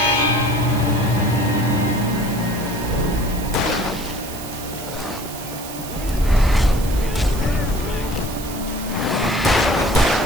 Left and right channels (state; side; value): noise; right; hiss, 12 dB below the sound